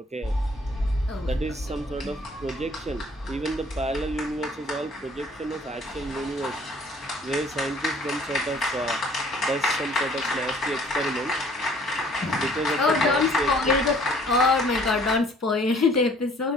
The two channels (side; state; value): both; normal; correlation 0.56